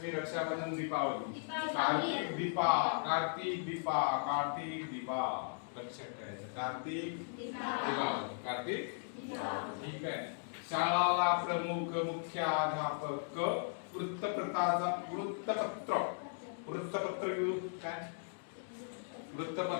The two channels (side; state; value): right; silent; digital silence